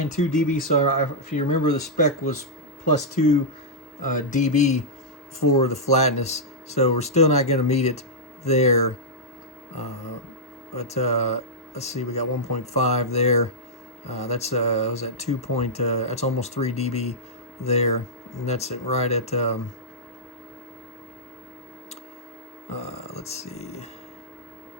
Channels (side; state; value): both; normal; correlation -0.09